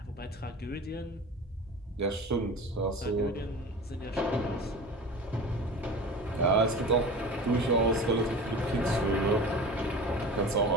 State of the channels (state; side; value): normal; both; correlation 0.34